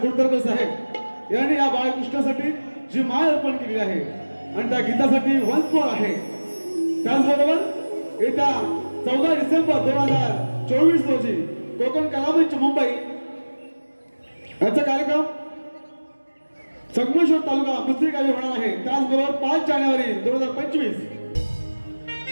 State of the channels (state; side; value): inverted; both; correlation -1.00